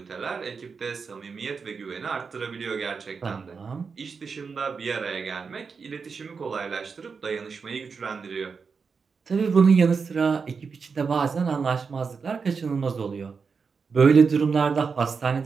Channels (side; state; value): left; quieter; 5.3 dB